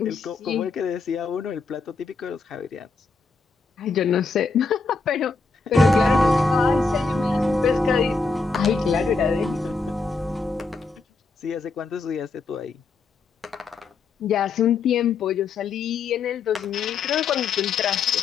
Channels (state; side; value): quieter; right; 4.3 dB